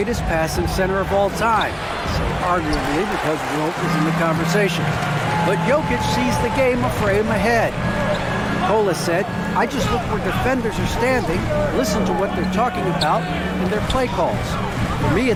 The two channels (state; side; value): identical; both; correlation 1.00